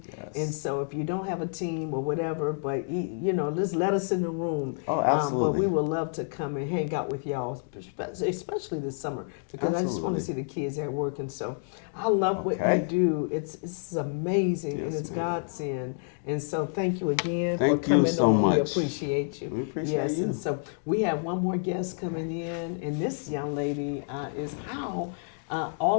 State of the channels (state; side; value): silent; right; digital silence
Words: And so if you don't have a team or whatever, but just let us in the room. Oh, But we would love to come and hang out with y'all, especially this summer, because I just want to see the kids at work. And so I love what you do. It's amazing, and it's Godsend. And so thank you again for Thank you coming so on. We much. appreciate you. We appreciate Yes, you. and so we have one more guest coming in, and this young lady is how